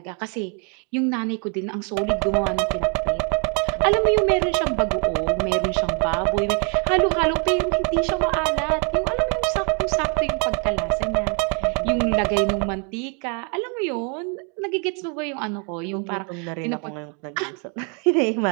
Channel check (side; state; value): left; quieter; 37.6 dB